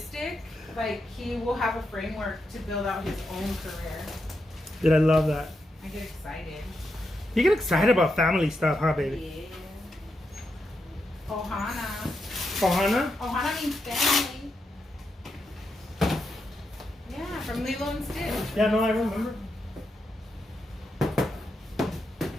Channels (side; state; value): both; normal; correlation 0.84